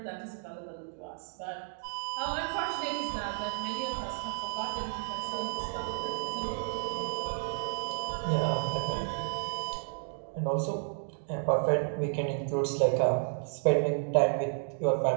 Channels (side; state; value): left; silent; digital silence